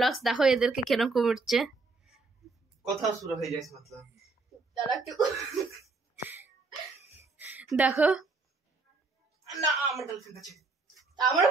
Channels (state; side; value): quieter; left; 3.8 dB